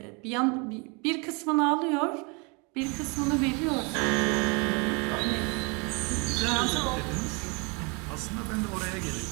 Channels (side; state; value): left; quieter; 31.4 dB